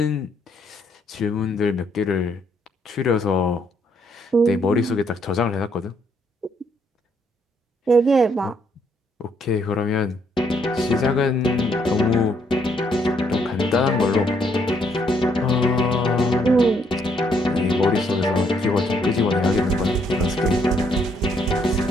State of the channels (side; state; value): both; normal; correlation 0.71